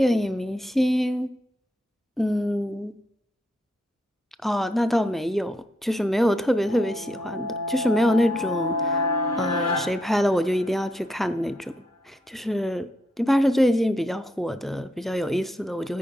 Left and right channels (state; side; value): normal; both; correlation 0.79